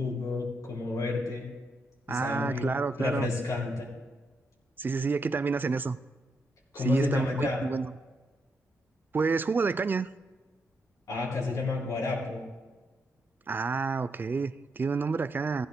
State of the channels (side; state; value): both; normal; correlation 0.79